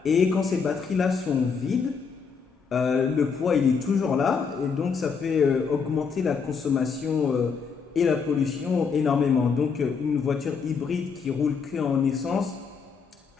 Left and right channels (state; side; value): quieter; right; 5.7 dB